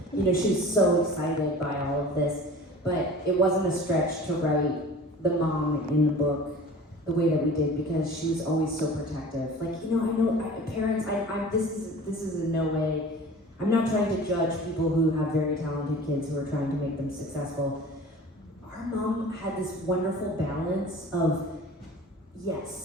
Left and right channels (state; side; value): normal; both; correlation 0.41